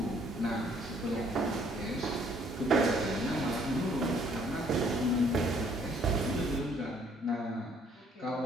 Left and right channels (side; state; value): both; normal; correlation 0.63